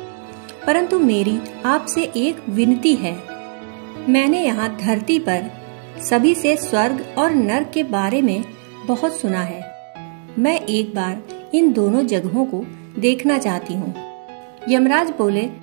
परंतु मेरी आपसे एक विनती है। मैंने यहाँ धरती पर सभी से स्वर्ग और नरक के बारे में बहुत सुना है। मैं एक बार इन दोनों जगहों को देखना चाहती हूँ। यमराज बोले,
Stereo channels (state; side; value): silent; left; 65 dB below the other